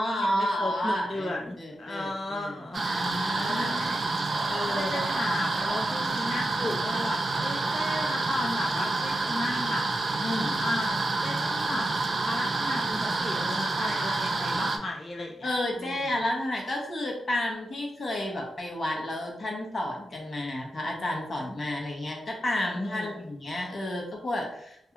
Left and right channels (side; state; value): both; normal; correlation 0.88